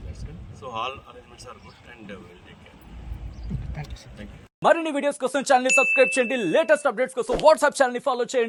So all arrangements are good and will take care. Thank you. మరిన్ని వీడియోస్ కోసం ఛానల్ ని సబ్స్క్రైబ్ చేయండి. లేటెస్ట్ అప్డేట్స్ కోసం వాట్సాప్ ఛానల్ ని ఫాలో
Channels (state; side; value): identical; both; correlation 1.00